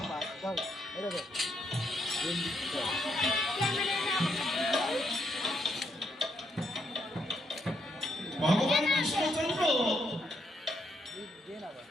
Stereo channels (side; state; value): both; normal; correlation 0.76